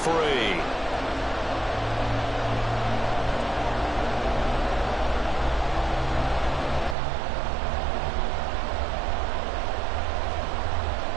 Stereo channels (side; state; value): left; drops out; at 7.0 s